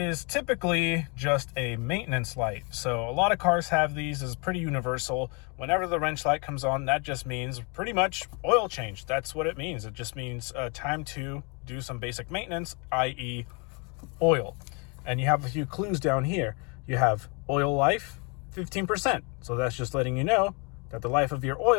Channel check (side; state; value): right; quieter; 32.8 dB